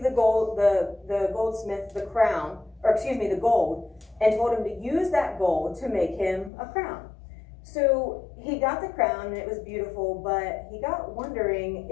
the goldsmith the crown, or excuse me, the gold, and told him to use that gold to make him a crown. So he got the crown and it was beautiful, but he got wondering,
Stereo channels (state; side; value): drops out; right; at 6.5 s